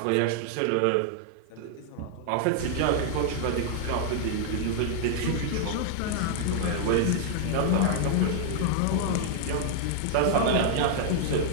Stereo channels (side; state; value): both; different; correlation -0.01